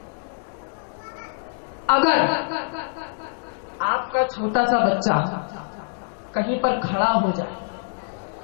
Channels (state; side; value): silent; right; digital silence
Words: اگر آپ کا چھوٹا سا بچہ کہیں پر کھڑا ہو جائے